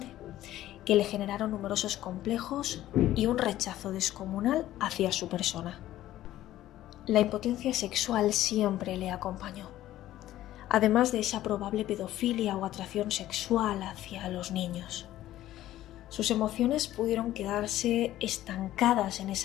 que le generaron numerosos complejos y un rechazo descomunal hacia su persona. La impotencia sexual siempre le acompañó, además de esa probable pedofilia o atracción sexual hacia los niños. Sus emociones pudieron quedarse estancadas en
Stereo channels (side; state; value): right; quieter; 14.0 dB